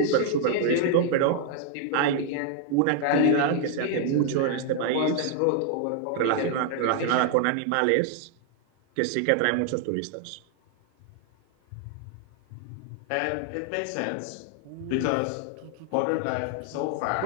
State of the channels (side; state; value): both; different; correlation 0.00